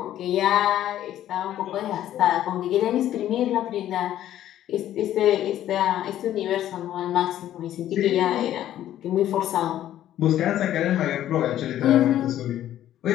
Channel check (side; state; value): right; quieter; 12.2 dB